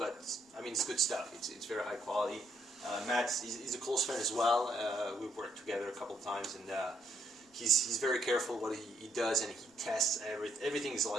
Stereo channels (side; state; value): both; normal; correlation 0.72